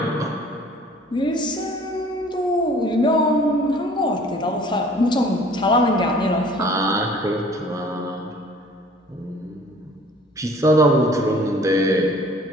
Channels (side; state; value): both; normal; correlation 0.51